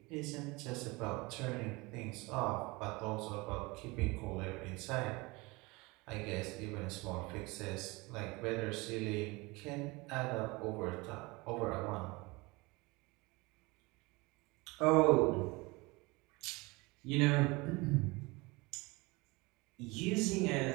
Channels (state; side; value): quieter; left; 24.4 dB